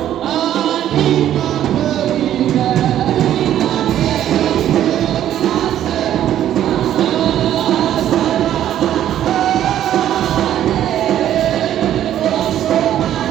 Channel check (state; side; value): quieter; left; 11.4 dB